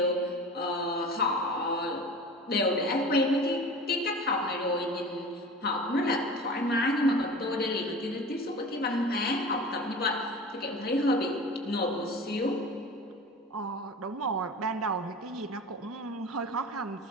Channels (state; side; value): normal; both; correlation 0.36